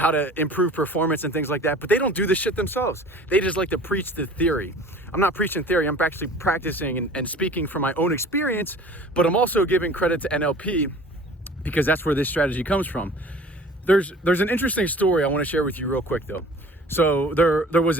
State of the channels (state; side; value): normal; both; correlation 0.45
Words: to improve performance and things like that, but they don't do this shit themselves. They just like to preach the theory. I'm not preaching theory. I'm actually practicing and speaking from my own experience, but I'm also giving credit to NLP because that's where this strategy comes from. There's an interesting story I want to share with you real quick though. So there was